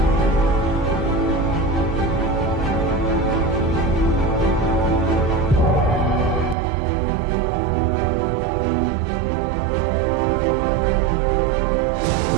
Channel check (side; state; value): left; drops out; at 6.6 s